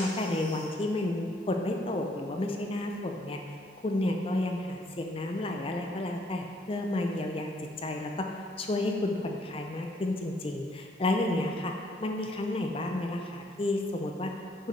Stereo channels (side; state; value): both; normal; correlation 0.67